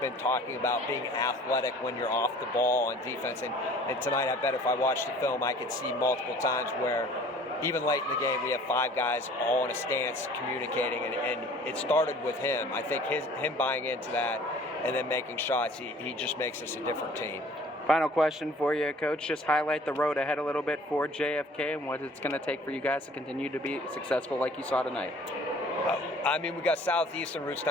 talking about being athletic when you're off the ball on defense. And tonight, I bet if I watched the film, I could see multiple times where even late in the game, we have 5 guys all in a stance communicating, and it started with him. I think him buying into that and then making shots, he just makes us a different team. Final question for you, Coach. Just highlight the road ahead a little bit for JFK and what it's going to take for you guys to continue to be successful like you saw tonight. I mean, we got Southeast and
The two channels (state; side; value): normal; both; correlation 0.50